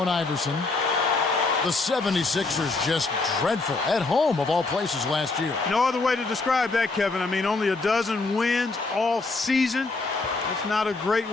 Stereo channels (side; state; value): right; quieter; 3.7 dB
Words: Iverson. The 76ers just dreadful at home of all places last year. No other way to describe that, Kevin. I mean, only a dozen wins all season. That's not a great